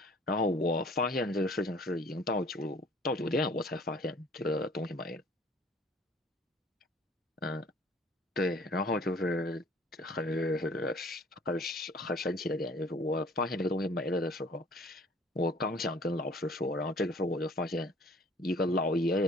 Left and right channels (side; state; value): both; normal; correlation 0.52